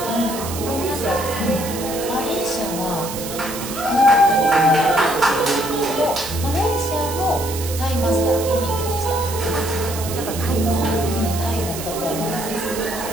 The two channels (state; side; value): noise; right; hiss, 9 dB below the sound